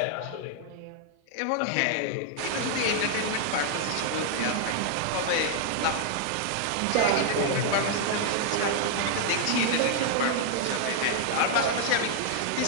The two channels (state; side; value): different; both; correlation 0.00